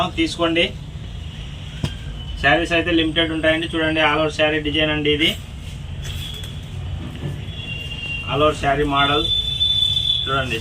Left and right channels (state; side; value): identical; both; correlation 1.00